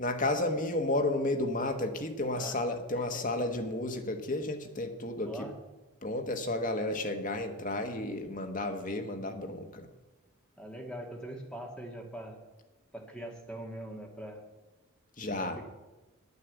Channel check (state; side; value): normal; both; correlation 0.12